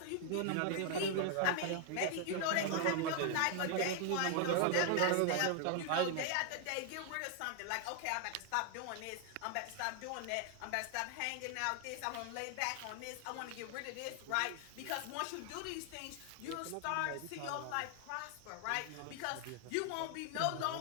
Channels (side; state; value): both; different; correlation 0.00